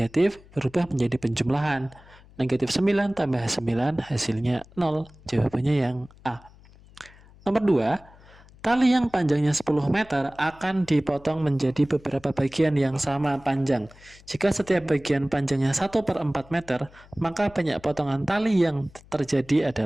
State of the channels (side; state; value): left; noise; hum, 24 dB below the sound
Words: berubah menjadi penjumlahan. Negatif 9 tambah 9 hasilnya 0. Jawabannya yang A. Nomor 2, tali yang panjangnya 10 meter akan dipotong menjadi beberapa bagian yang sama panjang. Jika setiap bagian panjangnya 1/4 meter, maka banyak potongan tali yang terjadi